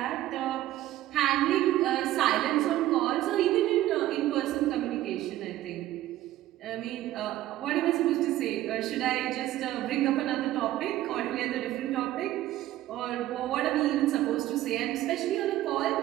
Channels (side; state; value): left; quieter; 14.5 dB